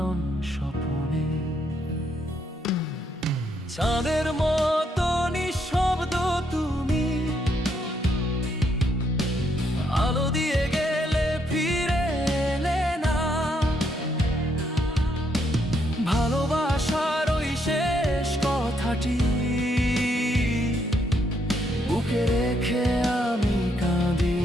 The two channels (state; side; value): normal; both; correlation 0.74